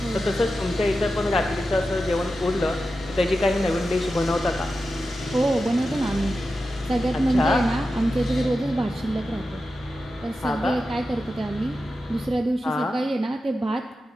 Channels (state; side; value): normal; both; correlation 0.91